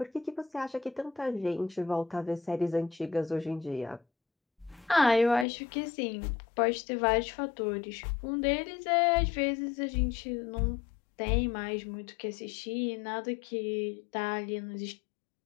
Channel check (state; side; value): drops out; right; at 5.5 s